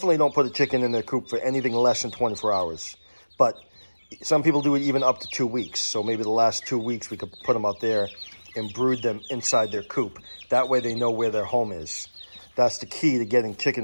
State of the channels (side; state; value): both; inverted; correlation -1.00